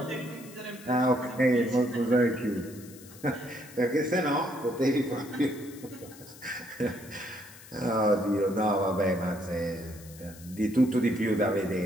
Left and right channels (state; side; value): noise; left; hiss, 19 dB below the sound